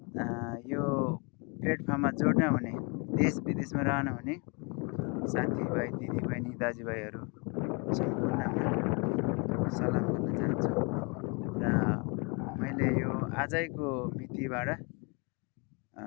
यो प्लेटफर्ममा जोड्न हुने देश विदेशमा रहनुहुने साथीभाइ दिदीबहिनी दाजुभाइहरू सम्पूर्णमा सलाम गर्न चाहन्छु र मैले यो आजैको मितिबाट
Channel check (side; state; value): right; quieter; 32.2 dB